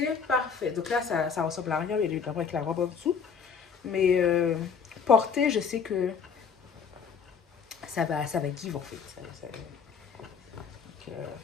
parfait. Donc là, ça ressemble à rien, mais évidemment avec la robe en dessous. Mais porter, je sais que ça va give en fait.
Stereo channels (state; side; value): quieter; right; 6.2 dB